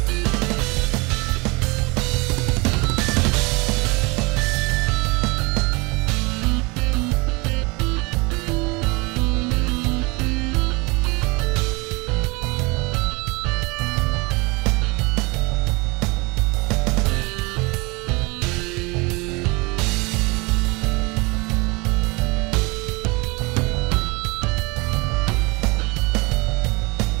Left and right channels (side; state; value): left; quieter; 26.5 dB